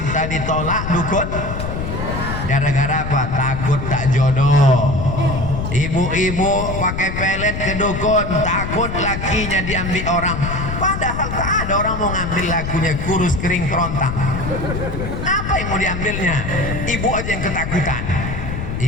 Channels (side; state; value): left; noise; rumble, 5 dB below the sound